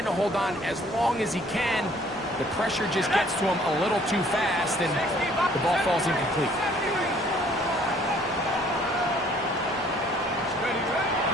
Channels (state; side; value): normal; both; correlation 0.59